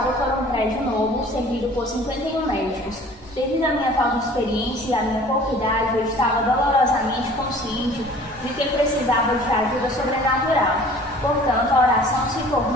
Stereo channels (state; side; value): normal; both; correlation 0.48